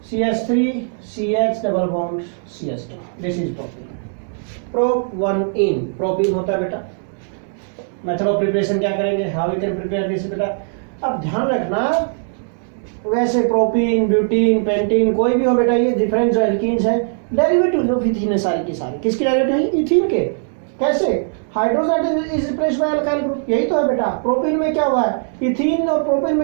CH3CH double bond CH2, this is propene. प्रोप1इन प्रोपीन होता है बेटा। मेथड ऑफ प्रिपरेशन क्या करेंगे? How we can prepare this बेटा। अब ध्यान रखना, वैसे प्रोपीन, ब्यूटीन, पेंटीन कोई भी हो बेटा, ये डिफरेंट जो एल्कीन्स है डेरिवेटिव ऑफ इथीन है सारी की सारी। किसकी डेरिवेटिव है? इथीन के। कैसे? Hydrogen is replaced bye alkyl group, यही तो है बेटा। प्रोपीन में क्या हुआ है? इथीन और प्रोपीन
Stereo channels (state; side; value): silent; left; 66 dB below the other